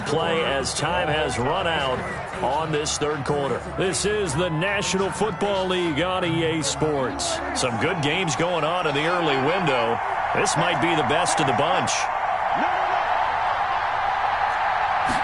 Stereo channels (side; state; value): both; identical; correlation 1.00